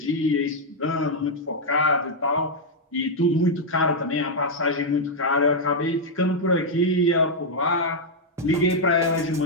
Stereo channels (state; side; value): normal; both; correlation -0.02